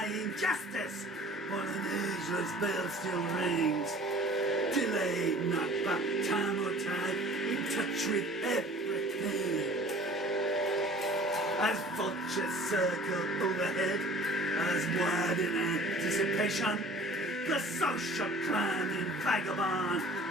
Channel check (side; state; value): both; normal; correlation 0.48